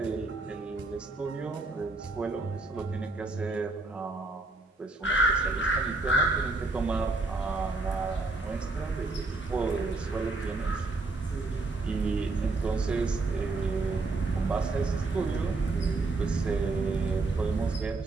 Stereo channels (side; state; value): left; quieter; 3.4 dB